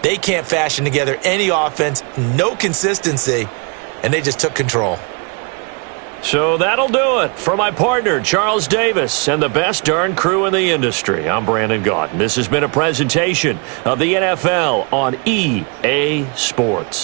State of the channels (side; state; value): left; quieter; 34.4 dB